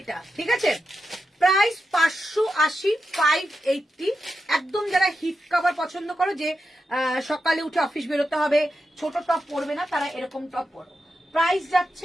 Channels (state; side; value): normal; both; correlation 0.88